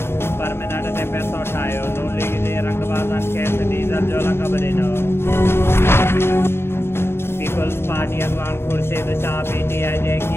परमिनेंट ते पैसो ठाहियो। नून लीग जे रंगबाज़नि खेसि डीज़ल जो लक़ब ॾिनो। पीपल्स पार्टी अॻवान ख़ुर्शीद शाह PTI जे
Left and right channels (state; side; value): late; right; 0.12 ms